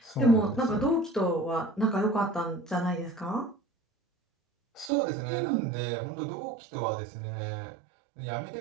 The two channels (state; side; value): drops out; left; at 4.9 s